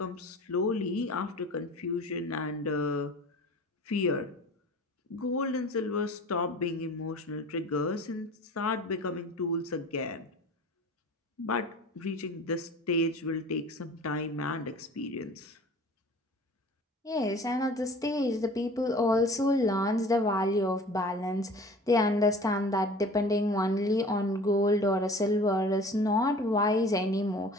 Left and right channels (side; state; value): both; normal; correlation 0.43